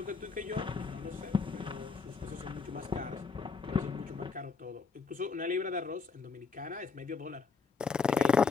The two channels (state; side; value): quieter; right; 5.0 dB